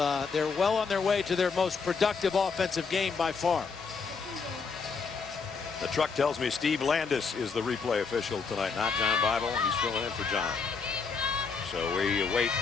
they're well on their way to their most productive offensive game by far. The truck tells me Steve Landis is the replay official tonight, not John Bible. He's filling in for John. So we await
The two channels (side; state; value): right; quieter; 5.2 dB